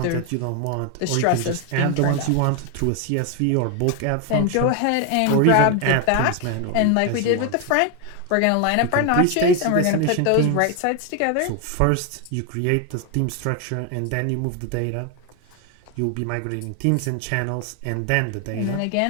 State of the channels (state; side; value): different; both; correlation 0.01